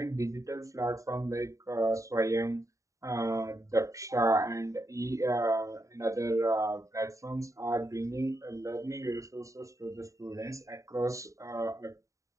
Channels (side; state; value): left; late; 0.16 ms